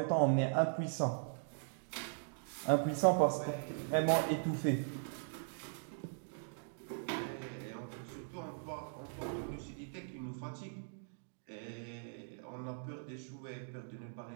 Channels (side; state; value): left; silent; digital silence